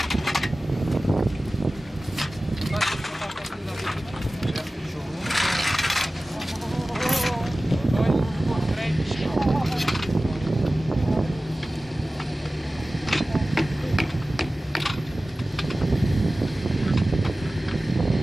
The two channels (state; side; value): normal; both; correlation 0.96